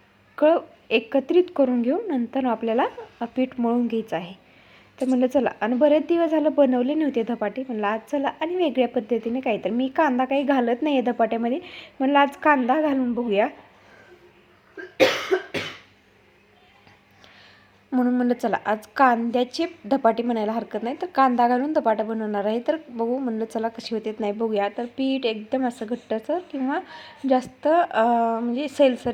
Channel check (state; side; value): identical; both; correlation 1.00